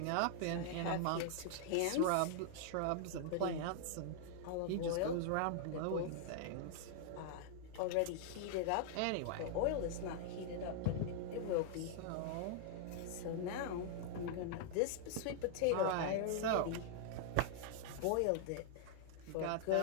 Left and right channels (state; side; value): different; both; correlation -0.01